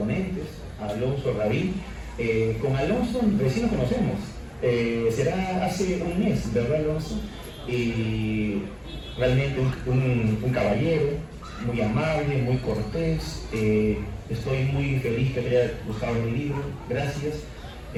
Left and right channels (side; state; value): both; identical; correlation 1.00